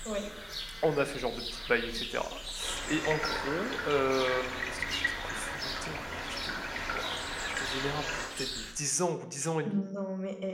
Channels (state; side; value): identical; both; correlation 1.00